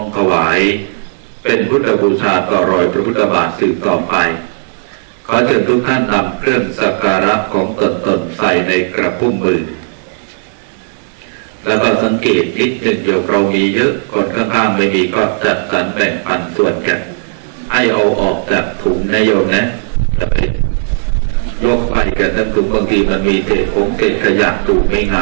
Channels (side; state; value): left; silent; digital silence